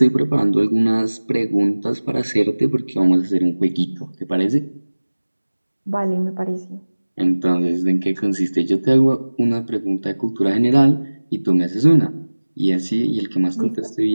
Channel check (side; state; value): both; inverted; correlation -1.00